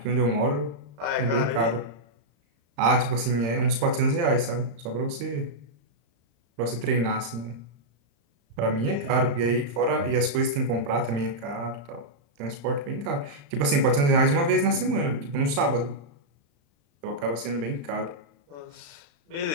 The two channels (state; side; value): late; left; 35 ms